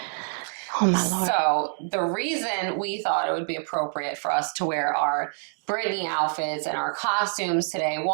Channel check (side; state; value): left; silent; 56 dB below the other